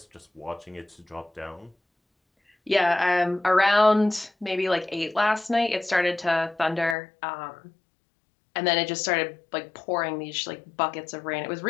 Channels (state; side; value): drops out; right; at 7.0 s